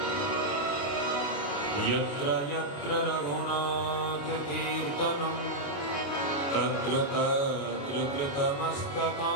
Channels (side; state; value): right; late; 28 ms